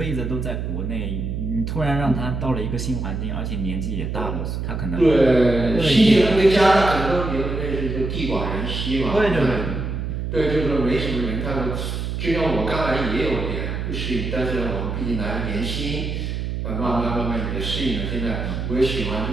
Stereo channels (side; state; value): right; noise; hum, 3 dB below the sound